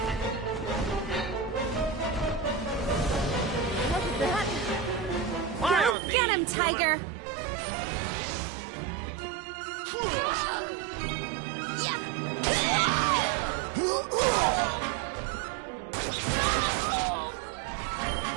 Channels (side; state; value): left; drops out; at 6.0 s